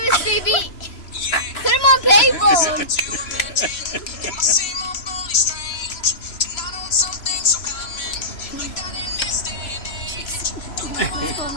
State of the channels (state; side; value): late; right; 3.0 ms